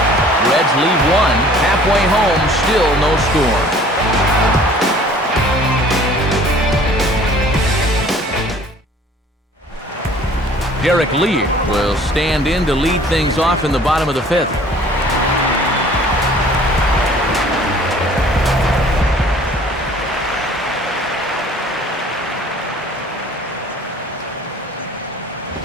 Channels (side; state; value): both; normal; correlation 0.52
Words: Reds leave one. Halfway home, still no score. Derek Lee will stand in to lead things off in the bottom of the fifth.